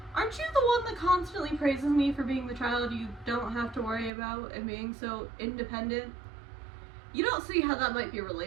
aren't you the one that constantly praises me for being the child you don't have to worry about and being so independent? You don't see how that might be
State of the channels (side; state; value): left; drops out; at 4.1 s